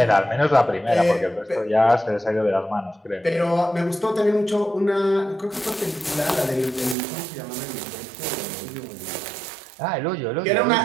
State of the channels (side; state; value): left; drops out; at 7.0 s